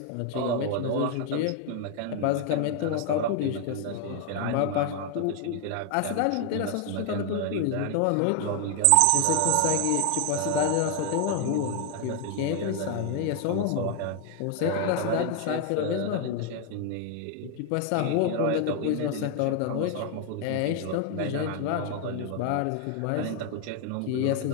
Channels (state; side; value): different; both; correlation 0.00